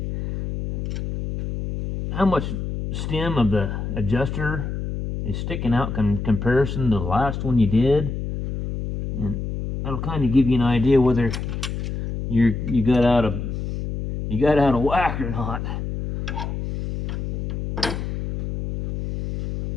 how much stem of the adjuster is sticking out in comparison to the last one you did. And that'll kind of give you an idea whether you got out of whack or not.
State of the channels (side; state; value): left; noise; hum, 5 dB below the sound